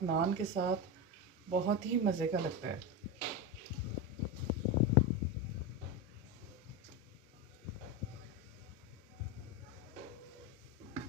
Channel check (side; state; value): both; normal; correlation 0.15